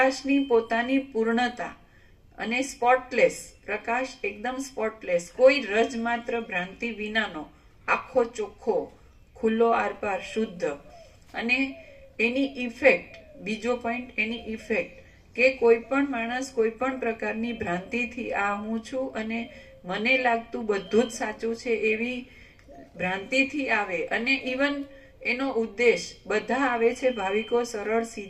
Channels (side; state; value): both; identical; correlation 1.00